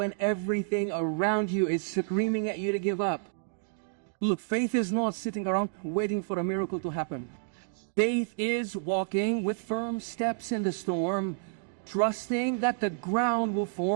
everything around you is screaming at you to give up. Look, faith is not sitting around waiting for a miracle to happen. Faith is walking with firm steps in the storm, trusting that the ground will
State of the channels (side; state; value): left; silent; digital silence